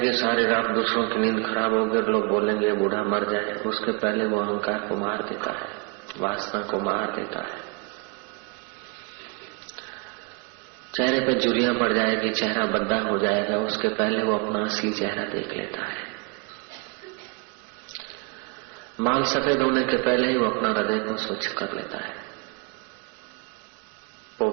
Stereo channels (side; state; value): left; quieter; 31.6 dB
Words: सारी रात दूसरों की नींद खराब होगी, लोग बोलेंगे बूढ़ा मर जाए, उसके पहले वो अहंकार को मार देता है, वासना को मार देता है। चेहरे पे झुर्रियां पड़ जाएगी, चेहरा बद्दा हो जाएगा, उसके पहले वो अपना असली चेहरा देख लेता है। माल सफेद होने के पहले ही वो अपना हृदय को स्वच्छ कर लेता है।